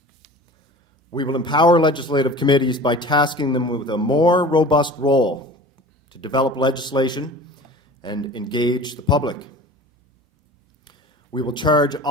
We will empower legislative committees by tasking them with a more robust role to develop legislation and engage the public. We will charge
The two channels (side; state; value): both; normal; correlation 0.40